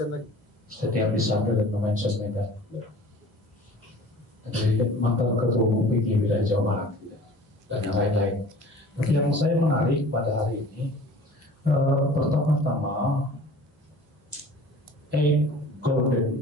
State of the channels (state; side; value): normal; both; correlation 0.45